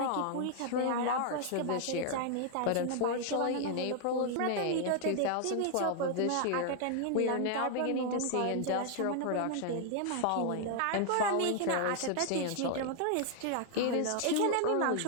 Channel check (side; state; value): both; different; correlation 0.00